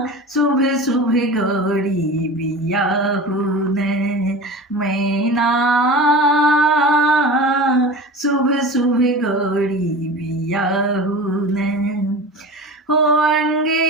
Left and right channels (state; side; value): normal; both; correlation 0.33